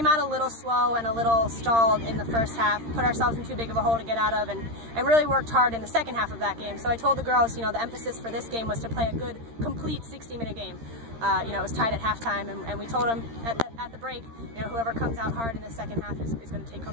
out a little slow and a little stalled in the first half, put ourselves in too big of a hole to get out of, and really worked hard in the second half of that game. So I told the girls, you know, the emphasis for this game was to play a good, complete 60-minute game. You know, it was tied at halftime, and we told them at the break, you know, whoever comes out hard in the second half is going to take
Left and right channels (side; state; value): left; late; 13 ms